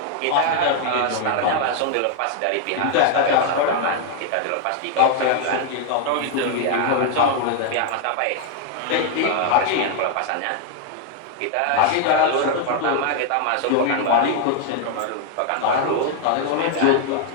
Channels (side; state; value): both; different; correlation 0.00